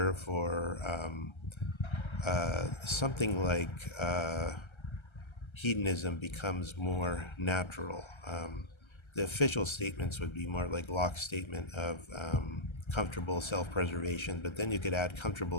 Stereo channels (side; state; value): right; late; 1.3 ms